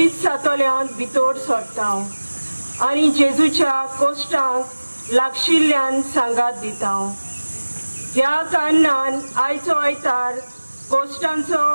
सातोल्यांत भितर सरता आनी जेजूच्या कोश्टांक लागशिल्ल्यान सांगात दिता. ह्या कारणान आयचो आयतार कोश्टांचो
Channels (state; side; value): inverted; both; correlation -1.00